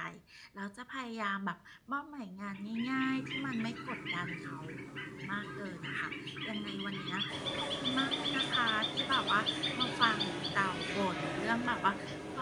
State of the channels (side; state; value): both; identical; correlation 1.00